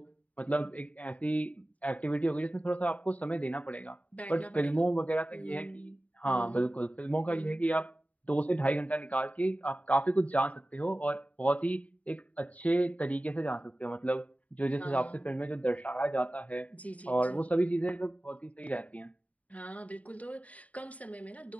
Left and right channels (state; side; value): late; right; 0.069 ms